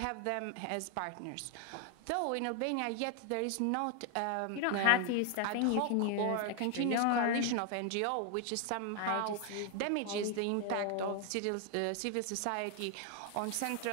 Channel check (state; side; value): different; both; correlation 0.00